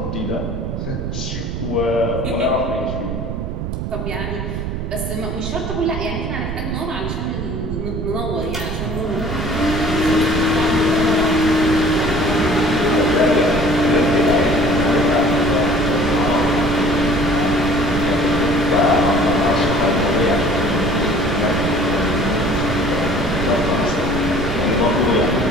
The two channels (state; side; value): noise; right; rumble, 4 dB below the sound